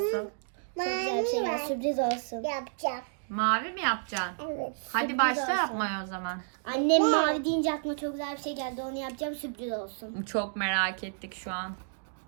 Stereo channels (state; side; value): silent; left; digital silence